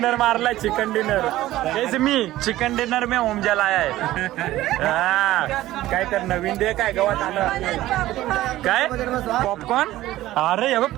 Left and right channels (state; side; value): quieter; left; 15.5 dB